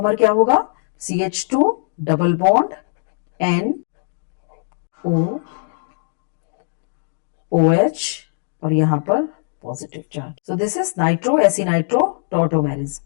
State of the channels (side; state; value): right; silent; digital silence